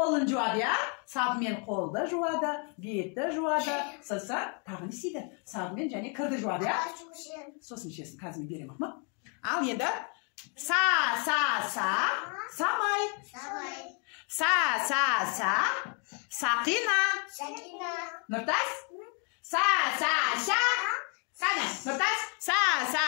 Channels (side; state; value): right; quieter; 37.6 dB